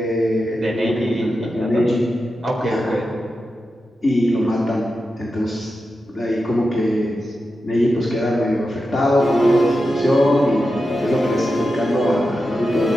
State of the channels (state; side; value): normal; both; correlation 0.90